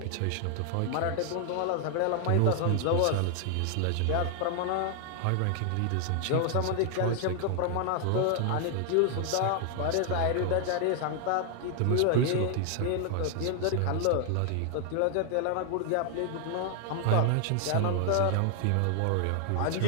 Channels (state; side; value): different; both; correlation 0.00